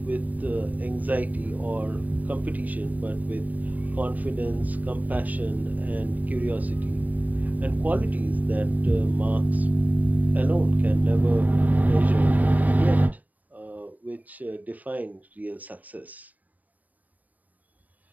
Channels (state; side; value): late; left; 0.077 ms